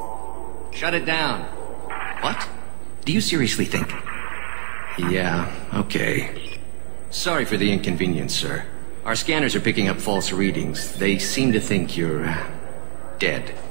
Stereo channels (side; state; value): left; silent; 57 dB below the other